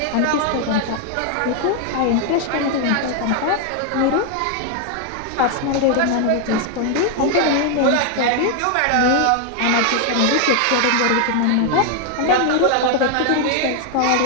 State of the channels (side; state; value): both; different; correlation 0.00